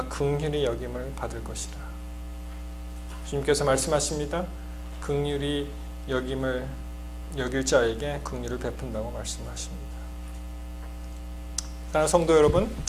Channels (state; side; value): identical; both; correlation 1.00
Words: 긍휼히 여김을 받을 것이다. 주님께서 말씀하십니다. 긍휼히 여길 자에게 긍휼을 베푼다고 말씀하십니다. 사랑하는 성도 여러분,